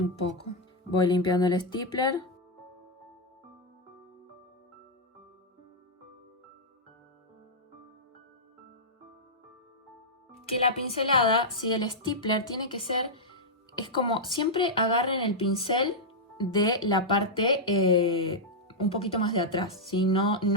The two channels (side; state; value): both; normal; correlation -0.06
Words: poco. Voy limpiando el stapler. Que la pincelada, si el stapler tiene que ser, es como siempre agarren el pincel de la parte un poquito más de atrás, ¿sí? No en